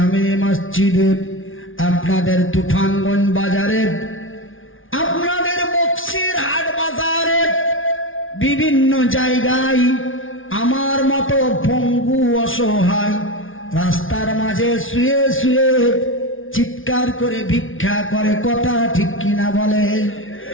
মসজিদে, আপনাদের তুফানগঞ্জ বাজারে, আপনাদের বক্সির হাট বাজারে, বিভিন্ন জায়গায় আমার মতো পঙ্গু অসহায় রাস্তার মাঝে শুয়ে শুয়ে চিৎকার করে ভিক্ষা করে, কথা ঠিক কিনা বলে?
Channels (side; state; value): right; late; 0.58 ms